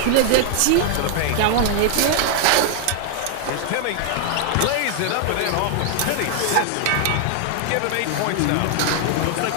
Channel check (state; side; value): different; both; correlation 0.00